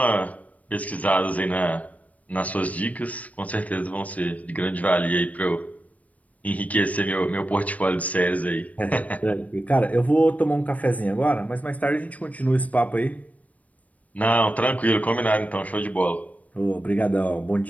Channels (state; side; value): late; right; 0.070 ms